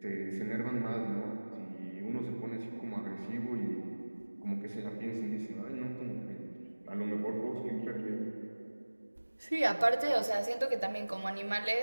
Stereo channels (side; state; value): both; inverted; correlation -1.00